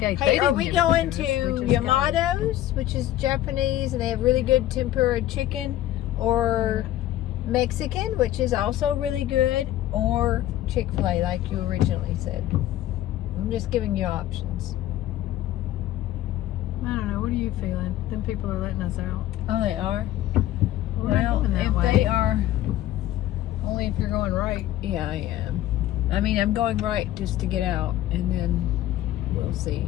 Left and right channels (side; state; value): right; quieter; 13.7 dB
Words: Hey, are we going to Yamato's, which is Japanese, and they have really good tempura chicken, or Mexican, which is also really good, or Chick-fil-A, like you originally said? I'm just giving you options. I don't know. What are you feeling? Them people are letting us out. Oh, they are? Well, if they are... Only if you're going right. Yeah, I am. I mean, I'm going right just to get out, and then we'll